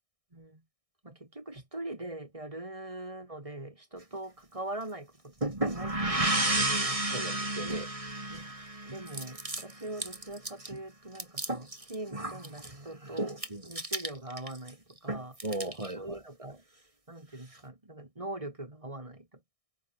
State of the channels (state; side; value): late; left; 1.6 ms